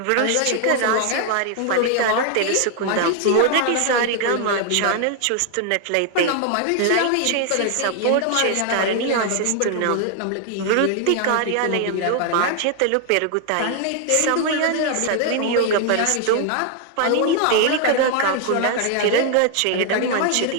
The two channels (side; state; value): both; different; correlation 0.00